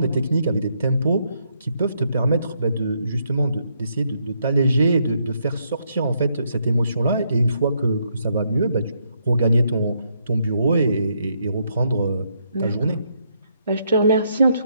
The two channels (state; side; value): inverted; both; correlation -0.75